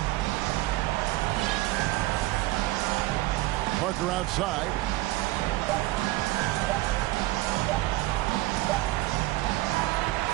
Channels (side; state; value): left; quieter; 18.7 dB